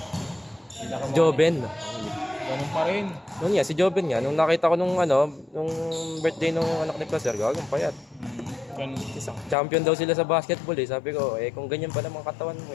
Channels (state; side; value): drops out; right; at 9.6 s